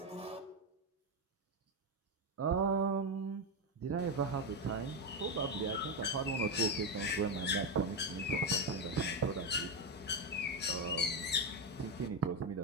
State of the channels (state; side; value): normal; both; correlation 0.09